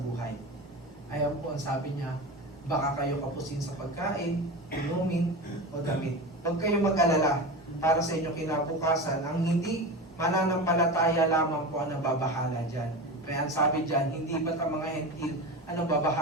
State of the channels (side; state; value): both; normal; correlation 0.26